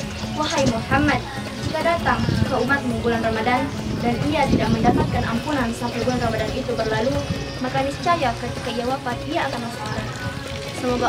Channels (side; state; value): both; identical; correlation 1.00